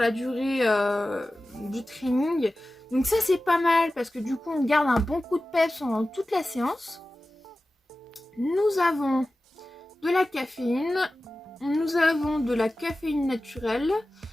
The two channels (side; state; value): both; normal; correlation 0.95